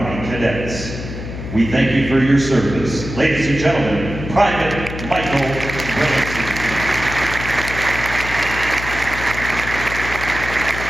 Cadets. We thank you for your service. Ladies and gentlemen, Private Michael Ramsey.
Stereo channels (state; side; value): noise; left; hum, 8 dB below the sound